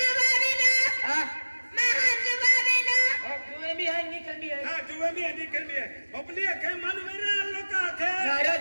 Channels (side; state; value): both; inverted; correlation -1.00